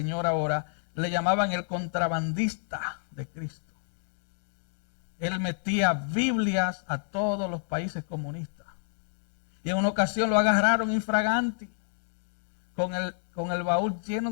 ahora. Le llamaban el contrabandista de Cristo. Él metía Biblias a todos los países comunistas. Y en una ocasión lo agarraron infraganti con el baúl lleno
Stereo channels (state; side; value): silent; right; digital silence